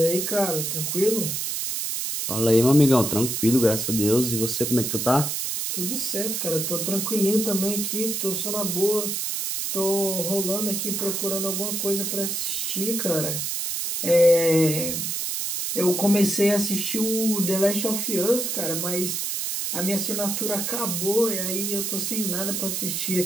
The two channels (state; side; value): noise; right; hiss, 2 dB below the sound